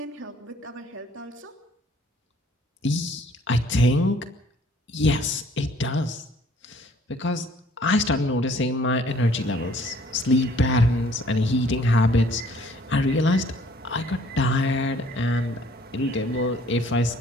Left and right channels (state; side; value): normal; both; correlation 0.58